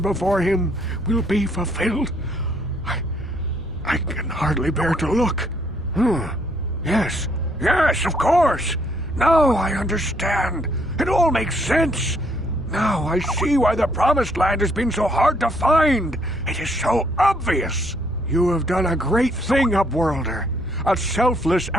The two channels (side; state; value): both; normal; correlation 0.68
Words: him will be fulfilled? I can hardly bear to look. Yes, of course. Now I understand. It all makes sense. Now I see why the Promised Land has been so hard to find. It is so obvious. You have done a great thing, Upworlder. A selfless